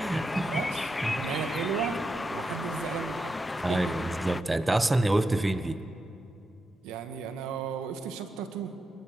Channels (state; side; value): normal; both; correlation 0.86